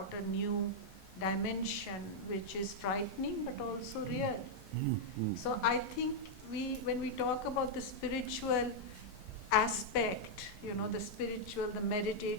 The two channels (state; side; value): normal; both; correlation -0.04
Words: a new dimension which is frightening but also real. So I think when we talk about the spiritual aspect, the spiritual, the